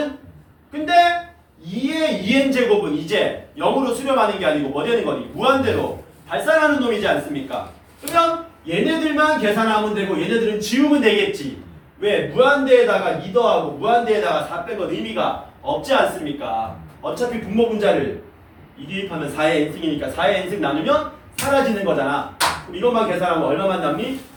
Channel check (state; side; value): identical; both; correlation 1.00